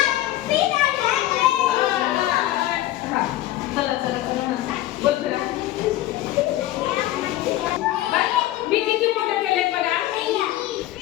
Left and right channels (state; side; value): quieter; right; 15.0 dB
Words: चला चला चला बोल करा. मी किती मोठं केलंय बघा. मी